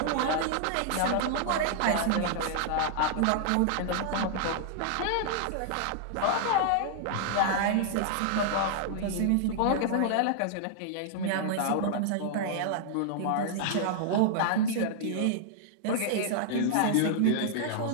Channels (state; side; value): different; both; correlation -0.01